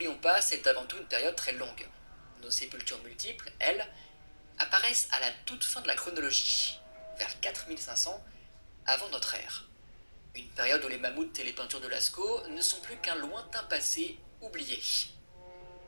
pas, c'est avant tout une période très longue. Nos sépultures multiples, elles, apparaissent à la toute fin de la chronologie, vers 4500 avant notre ère. Une période où les mammouths et les peintures de Lascaux ne sont plus qu'un lointain passé oublié.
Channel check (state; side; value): inverted; both; correlation -1.00